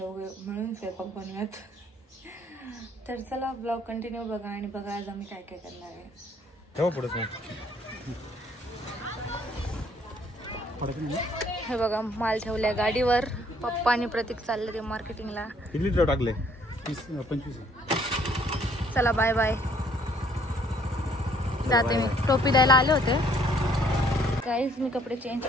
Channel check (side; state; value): both; normal; correlation 0.63